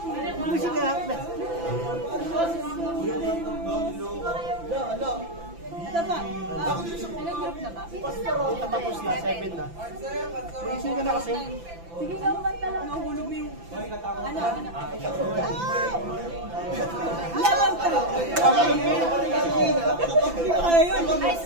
Musik ka. Tapos na, 7 na. Isin ka na kasi. Sige ka kumanta lang. Nahulog mo yung... Ano? Laban ka. Hindi ko kaya yun. High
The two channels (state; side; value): late; left; 5.9 ms